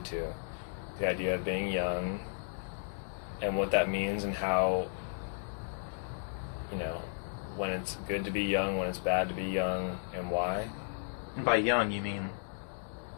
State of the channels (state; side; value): silent; right; digital silence